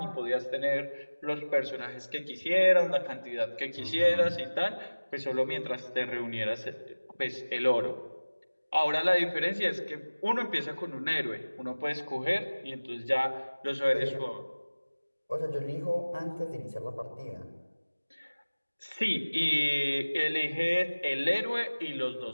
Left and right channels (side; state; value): both; inverted; correlation -1.00